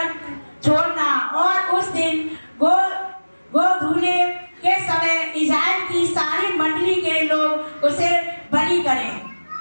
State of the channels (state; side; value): inverted; both; correlation -1.00